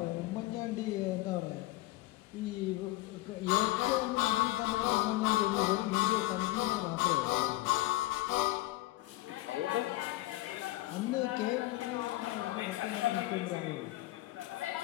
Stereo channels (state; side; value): quieter; right; 18.0 dB